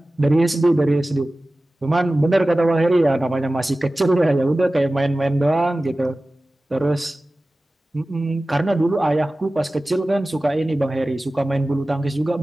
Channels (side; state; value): both; normal; correlation 0.96